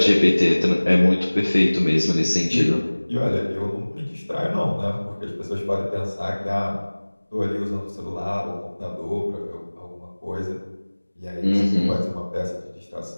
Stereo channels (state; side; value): inverted; both; correlation -1.00